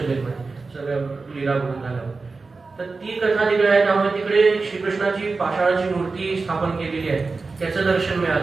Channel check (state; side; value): quieter; left; 4.0 dB